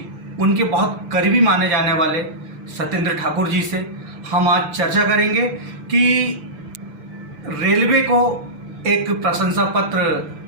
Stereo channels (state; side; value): late; left; 6.9 ms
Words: उनके बहुत करीबी माने जाने वाले सत्येंद्र ठाकुर जी से हम आज चर्चा करेंगे कि रेलवे को एक प्रशंसा पत्र